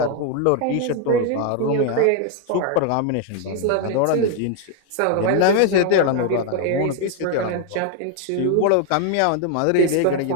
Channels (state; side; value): different; both; correlation 0.00